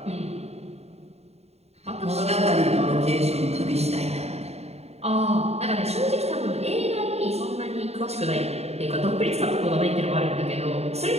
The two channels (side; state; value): left; late; 0.31 ms